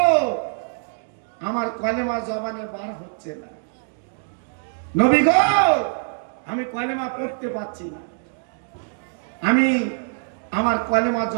আমার কলেমা জবানে বার হচ্ছে না, নবী গো, আমি কলেমা পড়তে পারছি না, আমি আমার কলেমা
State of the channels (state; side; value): silent; left; digital silence